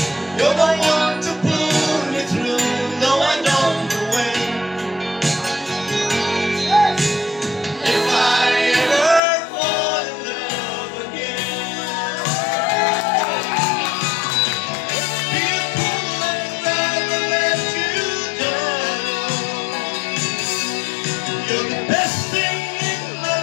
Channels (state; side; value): drops out; right; at 9.2 s